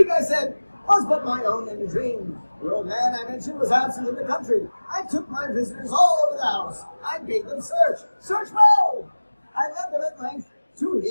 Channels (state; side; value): inverted; both; correlation -1.00